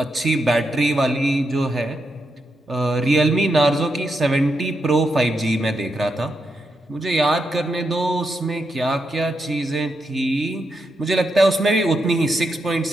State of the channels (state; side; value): normal; both; correlation 0.83